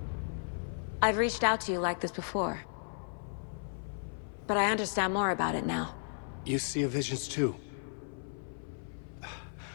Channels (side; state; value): right; silent; 55 dB below the other